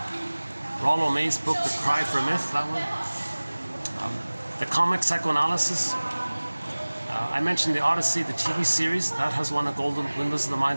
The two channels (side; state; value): both; inverted; correlation -1.00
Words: Rollo May's book, The Cry for Myth, that one. The Comic Psychoanalysis. I mentioned The Odyssey, the TV series. That has won a Golden Windmills of the